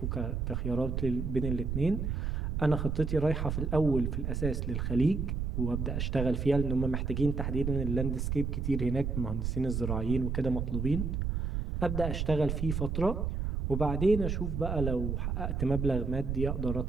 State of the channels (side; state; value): right; noise; rumble, 1 dB below the sound